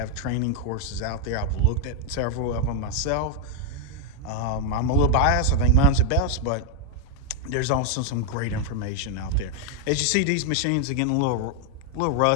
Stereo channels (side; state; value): both; different; correlation 0.00